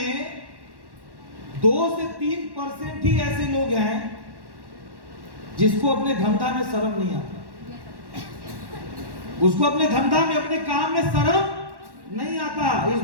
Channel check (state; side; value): late; left; 1.1 ms